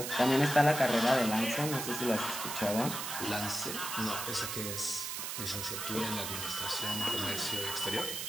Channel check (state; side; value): noise; right; hiss, 4 dB below the sound